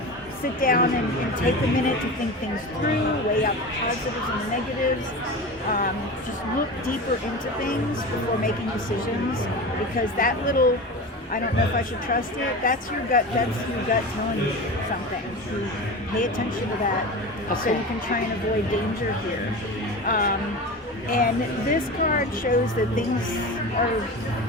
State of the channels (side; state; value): both; normal; correlation 0.28